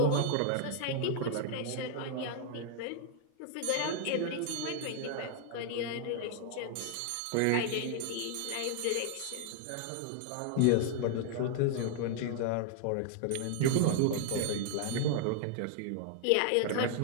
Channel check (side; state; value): both; different; correlation 0.00